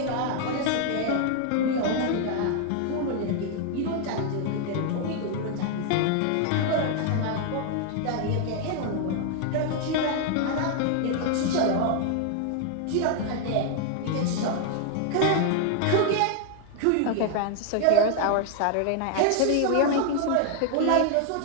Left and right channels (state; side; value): different; both; correlation 0.00